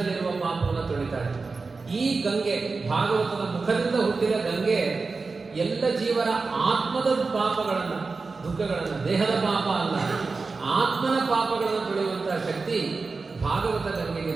ಪಾಪವನ್ನು ತೊಳಿತಾಳೆ. ಈ ಗಂಗೆ, ಭಾಗವತದ ಮುಖದಿಂದ ಹುಟ್ಟಿದ ಗಂಗೆ, ಎಲ್ಲ ಜೀವರ ಆತ್ಮದ ಪಾಪಗಳನ್ನು, ದುಃಖಗಳನ್ನು, ದೇಹದ ಪಾಪ ಅಲ್ಲ, ಆತ್ಮನ ಪಾಪಗಳನ್ನು ತೊಳೆಯುವಂತಹ ಶಕ್ತಿ ಭಾಗವತ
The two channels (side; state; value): left; quieter; 4.2 dB